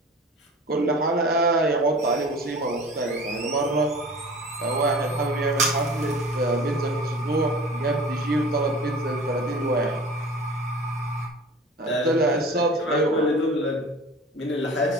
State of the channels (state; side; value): normal; both; correlation 0.40